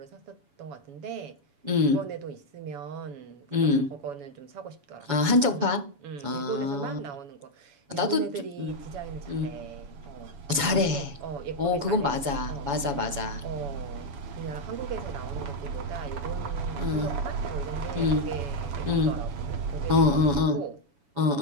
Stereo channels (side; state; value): left; late; 7.1 ms